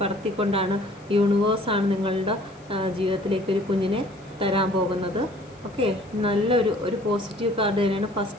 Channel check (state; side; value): noise; left; hiss, 28 dB below the sound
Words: പറത്തിക്കൊണ്ടാണ് യൂണിവേഴ്സാണ് നിങ്ങളുടെ ജീവിതത്തിലേക്ക് ഒരു കുഞ്ഞിനെ തരാൻ പോകുന്നത്. ഓക്കെ, നല്ലൊരു പോസിറ്റീവ് കാർഡ് തന്നെയാണ്